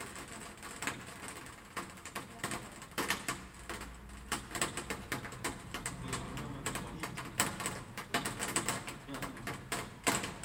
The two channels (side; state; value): both; identical; correlation 1.00